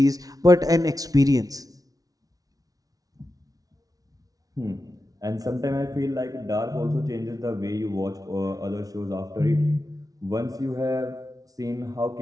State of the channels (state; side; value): late; left; 0.18 ms